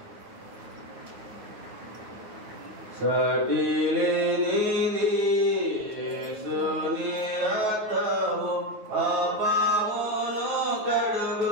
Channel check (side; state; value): left; late; 9.4 ms